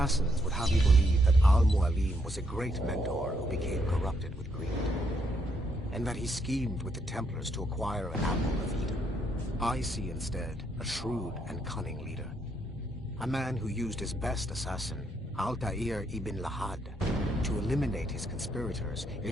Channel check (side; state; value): both; normal; correlation 0.75